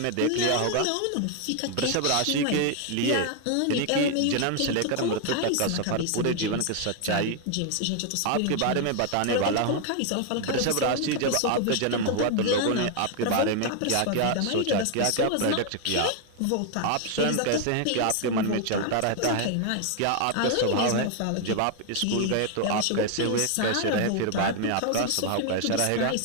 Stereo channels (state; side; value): different; both; correlation 0.00